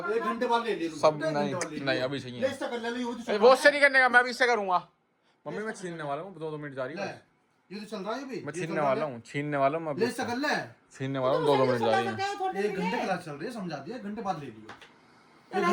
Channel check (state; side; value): identical; both; correlation 1.00